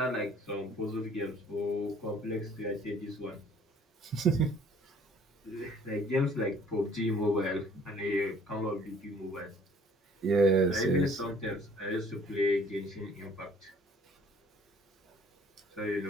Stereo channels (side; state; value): both; normal; correlation 0.56